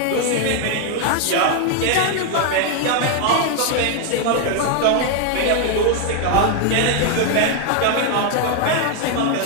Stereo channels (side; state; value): both; different; correlation 0.00